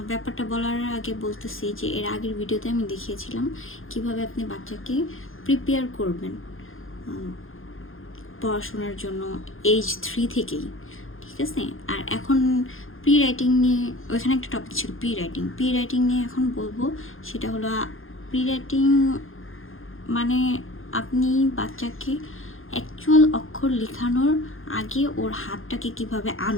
ব্যাপারটা বলার আগে বলতেছি যে এর আগের ভিডিওতে আমি দেখিয়েছিলাম কিভাবে আপনি বাচ্চাকে প্রিপেয়ার করবেন পড়াশোনার জন্য এজ 3 থেকেই, ঠিক আছে। আর এখন প্রি রাইটিং নিয়ে ওইখানে একটা টপিক ছিল প্রি রাইটিং নিয়ে এখন বলবো। সেটা হলো প্রি রাইটিং মানে আপনি বাচ্চাকে অ্যাকচুয়াল অক্ষর লেখানোর আগে ওর হাতটাকে কিভাবে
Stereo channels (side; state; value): right; late; 0.60 ms